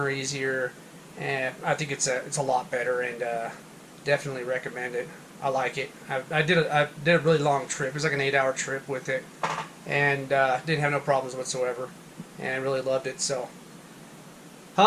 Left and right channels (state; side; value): identical; both; correlation 1.00